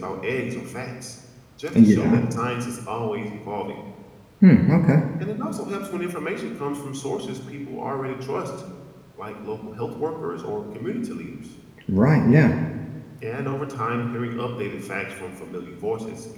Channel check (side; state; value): both; identical; correlation 1.00